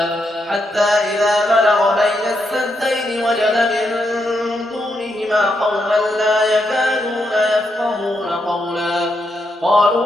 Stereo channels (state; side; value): normal; both; correlation 0.81